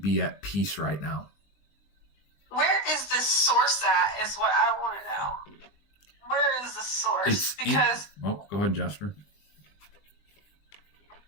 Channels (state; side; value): late; right; 20 ms